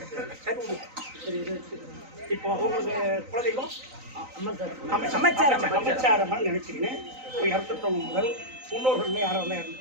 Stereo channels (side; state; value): left; late; 3.9 ms